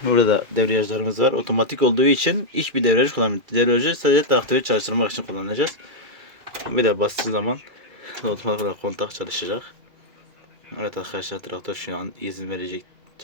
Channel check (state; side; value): late; left; 2.4 ms